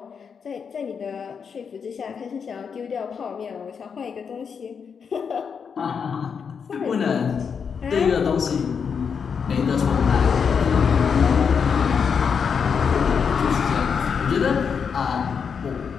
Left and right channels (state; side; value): quieter; right; 6.4 dB